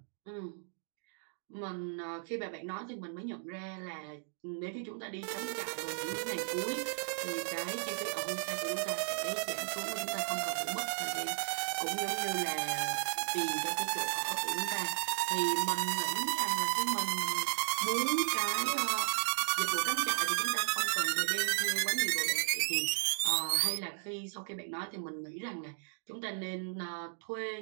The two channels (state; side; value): silent; left; digital silence